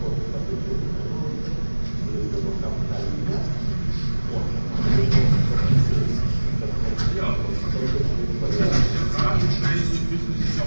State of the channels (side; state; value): both; inverted; correlation -1.00